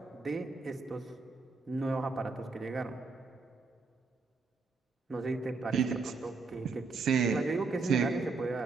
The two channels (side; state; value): left; quieter; 4.2 dB